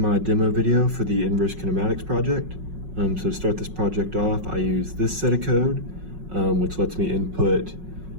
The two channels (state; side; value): late; left; 5.4 ms